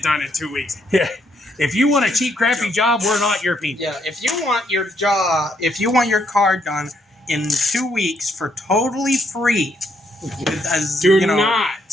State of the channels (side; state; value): both; normal; correlation 0.73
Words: done in 2 weeks. Yeah. If you want a cheap, crappy job, we're not your people. Yeah, if you want your car done in 2 weeks for totally free, Do you know,